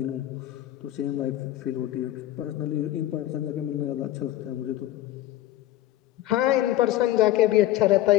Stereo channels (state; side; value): quieter; right; 14.4 dB